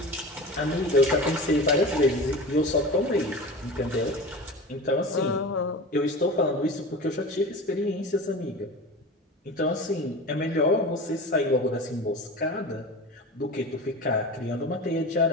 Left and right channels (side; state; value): both; normal; correlation 0.32